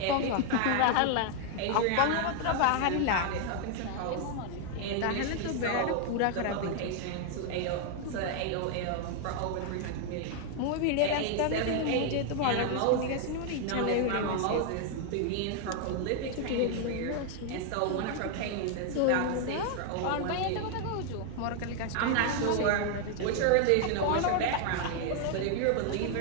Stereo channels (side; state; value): both; different; correlation 0.00